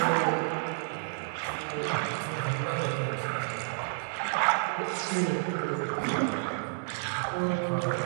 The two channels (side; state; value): left; silent; 58 dB below the other